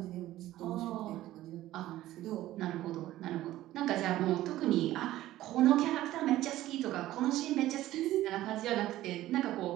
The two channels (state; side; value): quieter; left; 14.9 dB